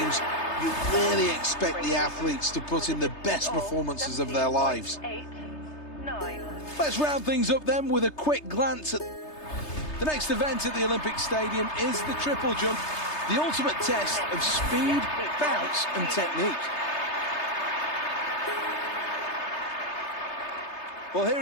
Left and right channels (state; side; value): late; right; 3.3 ms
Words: you really expect the athletes to put in the best performances of their lives. 8, 9. Let's round things up then with a quick glance at the next event at the Olympic Stadium is the triple jump, the ultimate test of speed, bounce and technique. Well,